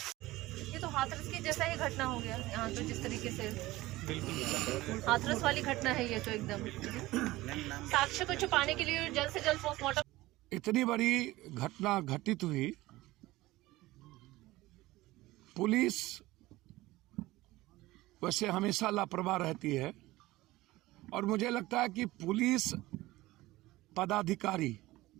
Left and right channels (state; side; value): quieter; left; 18.3 dB